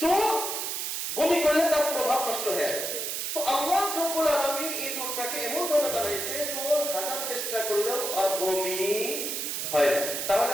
তো বমি করলে তার প্রভাব নষ্ট হয়ে যায়। তো আল্লাহ রাব্বুল আলামিন এই দুধটাকে এমন ভাবে বানাইছে যে ও হাজার চেষ্টা করলেও আর বমি হয় না। তাহলে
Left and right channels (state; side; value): noise; right; hiss, 3 dB below the sound